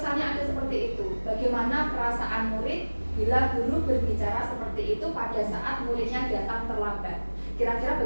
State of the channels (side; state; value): both; inverted; correlation -1.00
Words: ada seperti itu, bagaimana perasaan murid bila guru berbicara seperti itu pada saat muridnya datang terlambat? Kira-kira